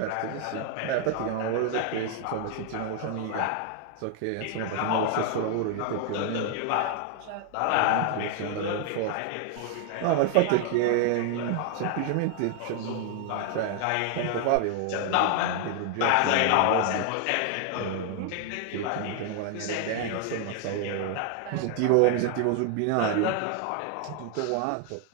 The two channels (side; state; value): both; different; correlation 0.00